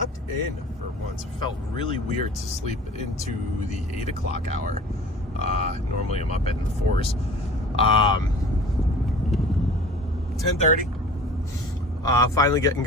in for once. It felt really weird to sleep into the 8 o'clock hour. Normally I'm up in the 4s. 10:30. Finally getting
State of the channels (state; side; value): normal; both; correlation 0.43